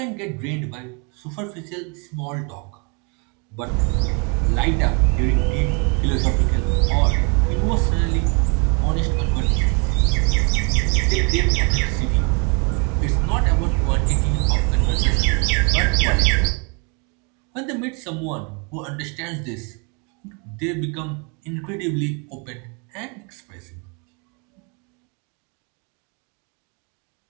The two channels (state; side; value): quieter; left; 34.5 dB